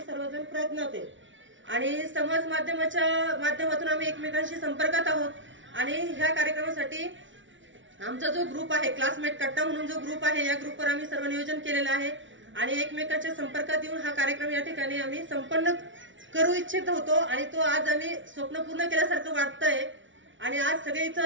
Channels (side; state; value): left; late; 0.56 ms